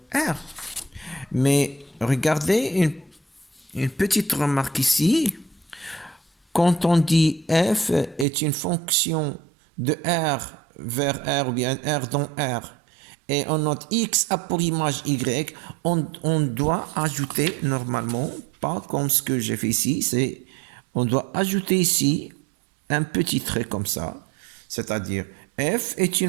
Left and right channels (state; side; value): drops out; left; at 8.2 s